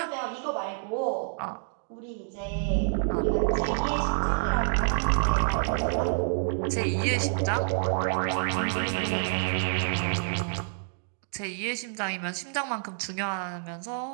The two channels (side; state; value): left; silent; 59 dB below the other